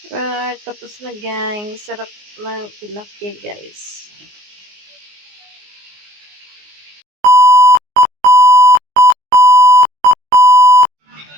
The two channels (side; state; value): left; late; 19 ms